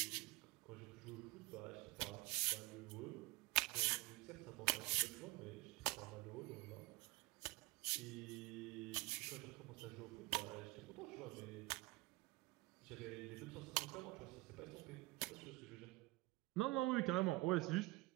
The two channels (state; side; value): quieter; left; 22.6 dB